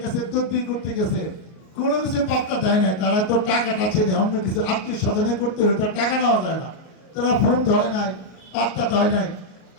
কাছে তদবির করতে গেছে, কোনো কিছু পাত্তা দেয় না। তারা তো টাকাটা চেনে, অন্য কিছু আত্মীয় স্বজনে করতে হলে তার টাকা নেওয়া যায় না, তারা ফোন ধরে নাই, পাত্তা দেয় নাই।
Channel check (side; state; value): right; late; 38 ms